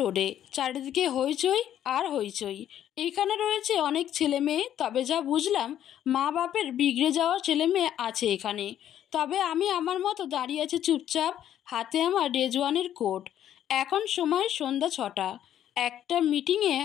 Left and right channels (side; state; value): right; quieter; 10.9 dB